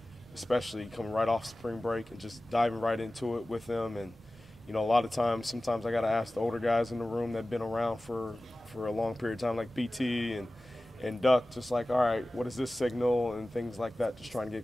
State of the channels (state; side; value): normal; both; correlation 0.97